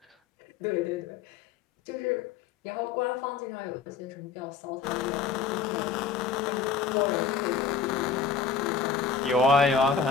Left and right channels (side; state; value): right; quieter; 5.9 dB